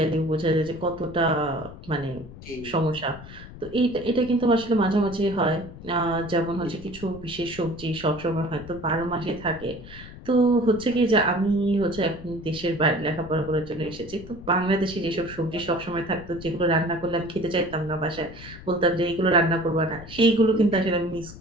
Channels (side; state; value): left; noise; rumble, 15 dB below the sound